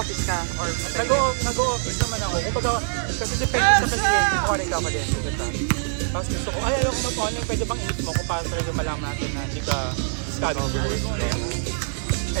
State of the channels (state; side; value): silent; left; 55 dB below the other